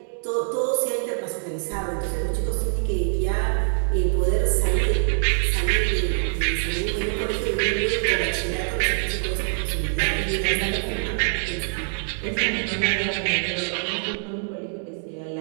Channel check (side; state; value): left; silent; digital silence